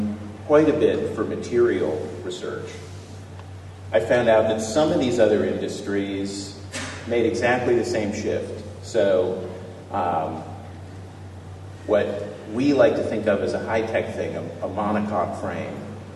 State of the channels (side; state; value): both; identical; correlation 1.00